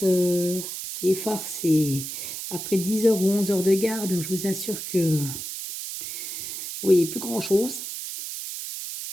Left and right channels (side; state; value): right; noise; hiss, 7 dB below the sound